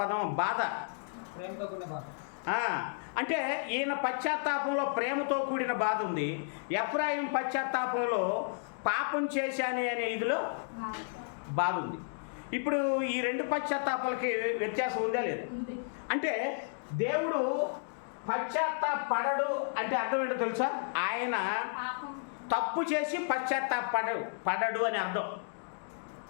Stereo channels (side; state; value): right; silent; digital silence